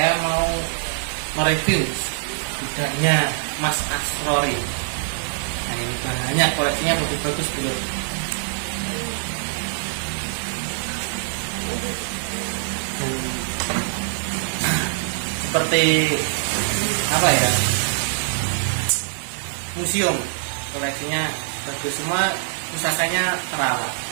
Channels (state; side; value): silent; left; digital silence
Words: mau mereview gudangnya Mas Asrori. Nah, ini banyak koleksinya, bagus-bagus dulu. Seperti apa ya, museum, koleksinya bagus semua, pusakanya terawat.